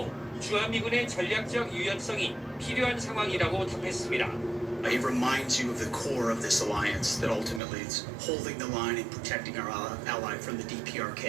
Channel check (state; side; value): drops out; left; at 7.6 s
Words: 주한미군의 전략적 유연성이 필요한 상황이라고 답했습니다. It reminds you of the core of this alliance, that ultimately it's holding the line and protecting our ally from the